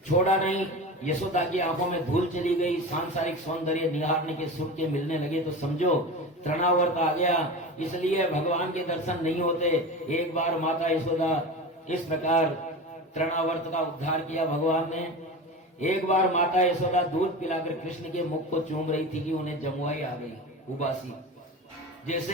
छोड़ा नहीं। यशोदा की आंखों में धूल चली गई, सांसारिक सौंदर्य निहारने के सुख के मिलने लगे तो समझो तृणावर्त आ गया। इसलिए भगवान के दर्शन नहीं होते। एक बार माता यशोदा इस प्रकार तृणावर्त का उद्धार किया भगवान ने। एक बार माता यशोदा दूध पिलाकर कृष्ण के मुख को चूम रही थी कि उन्हें जमुआई आ गई, उबासी। जैसे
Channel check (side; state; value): both; normal; correlation 0.28